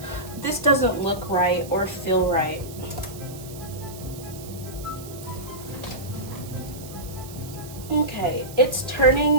This doesn't look right or feel right. Okay, it's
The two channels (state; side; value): noise; right; hiss, 16 dB below the sound